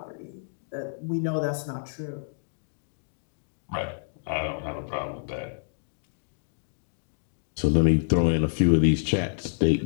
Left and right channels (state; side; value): silent; right; digital silence